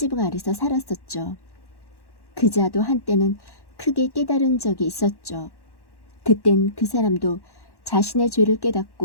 아래서 살았었죠. 그 자도 한때는 크게 깨달은 적이 있었죠. 그땐 그 사람도 자신의 죄를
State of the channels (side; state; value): right; late; 1.1 ms